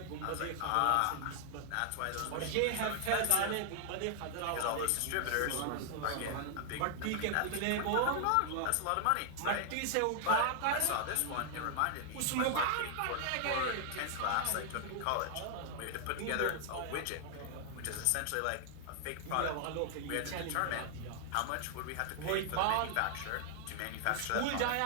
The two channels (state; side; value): different; both; correlation 0.00